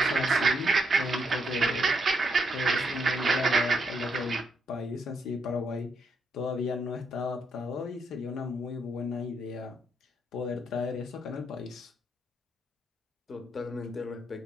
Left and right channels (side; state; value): both; normal; correlation 0.76